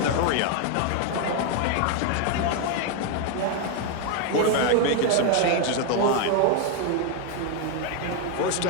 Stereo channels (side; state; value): both; different; correlation 0.01